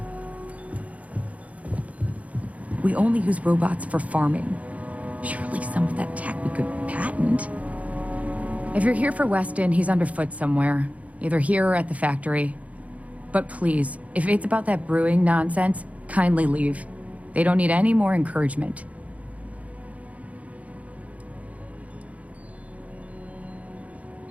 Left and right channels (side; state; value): left; late; 0.068 ms